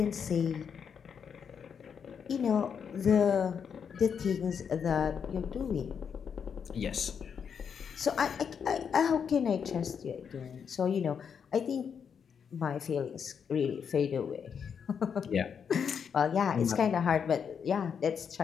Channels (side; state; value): right; quieter; 7.0 dB